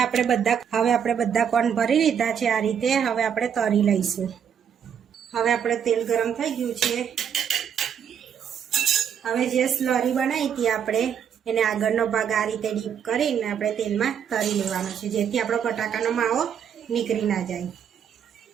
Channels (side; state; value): left; quieter; 8.1 dB